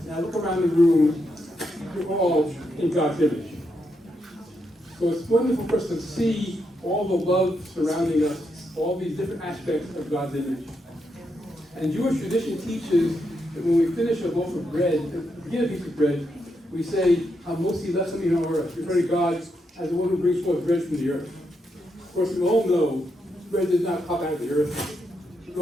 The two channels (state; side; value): normal; both; correlation 0.81